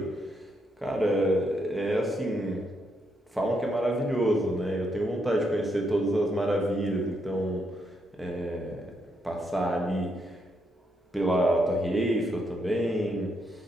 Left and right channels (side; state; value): both; normal; correlation 0.78